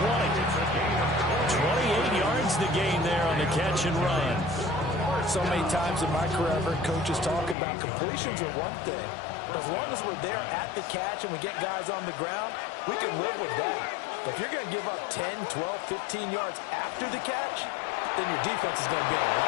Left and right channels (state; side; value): drops out; right; at 7.6 s